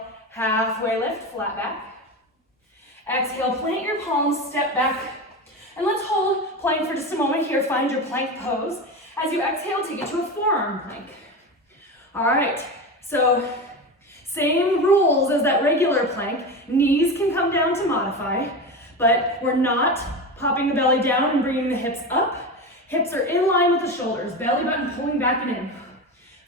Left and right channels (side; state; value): both; normal; correlation 0.23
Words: halfway lift, flat back. Exhale, plant your palms, step back. And let's hold plank for just a moment here. Find your plank pose. As you exhale, take it to a forearm plank. All right, so same rules as that regular plank. Knees can come down to modify, but we're not popping the belly down and bringing the hips up. Hips are in line with the shoulders. Belly button pulling back and in.